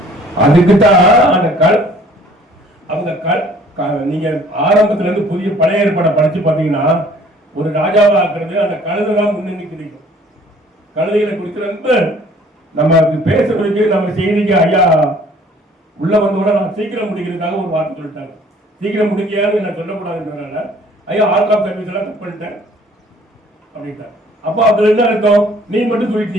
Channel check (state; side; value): normal; both; correlation 0.55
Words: அதுக்குதான் அந்த அவங்க நீங்க ஆரம்பத்துல இருந்து புதிய பழைய ஏற்பாடை படிச்சு பாத்தீங்கன்னா ஒரு ராஜாவா ஆக்குறது அந்த கழுதை தான் முன்னணி கிடைக்கும். கழுதைகளை குறித்து ரொம்ப நம்ம பேசுறதுக்கு நம்ம செய்திக்கு ஐயா உள்ள வந்தோட நான் சீக்கிரம் முடிக்கிறதுக்காக ஒரு வார்த்தை சொல்லிட்டாங்க. சீக்கிரம் முடிக்கையான்னு நான் சொல்லக்கூடாதுன்றதுனால ஐயா ஆர்ட் ஆஃப் சர்வீஸ் எல்லாம் கட் பண்ணிட்டேன் அப்படின்ட்டாங்க. அப்போ அதுல என்ன அர்த்தம், நீ மட்டும்